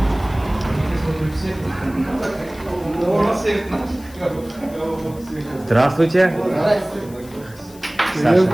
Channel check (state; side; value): noise; left; hiss, 22 dB below the sound